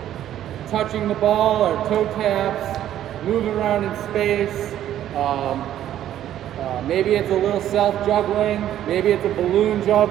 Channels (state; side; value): quieter; left; 11.7 dB